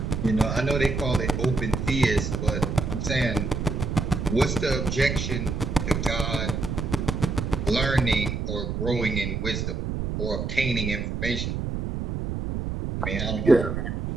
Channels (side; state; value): right; noise; rumble, 2 dB below the sound